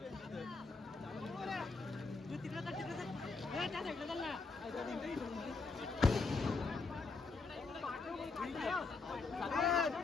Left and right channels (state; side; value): quieter; right; 4.1 dB